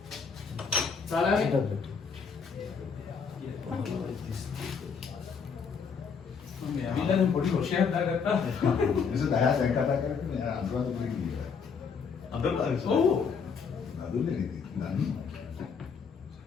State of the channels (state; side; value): quieter; right; 5.9 dB